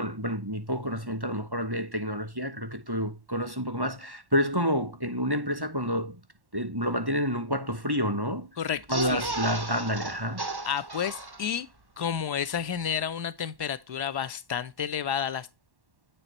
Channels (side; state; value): left; late; 1.1 ms